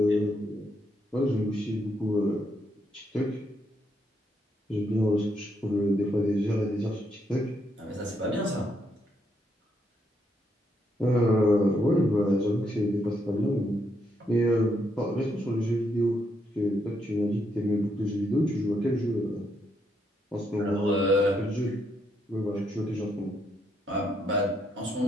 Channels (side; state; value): both; normal; correlation 0.76